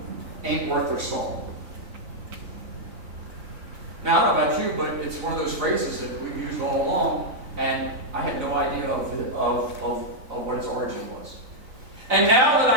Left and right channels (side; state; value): left; late; 4.0 ms